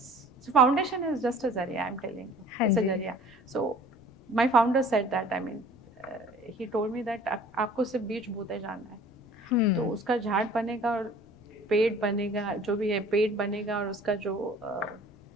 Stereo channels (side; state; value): left; noise; rumble, 28 dB below the sound